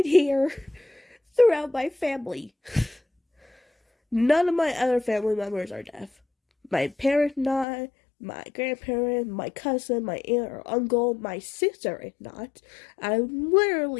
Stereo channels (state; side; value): drops out; right; at 7.7 s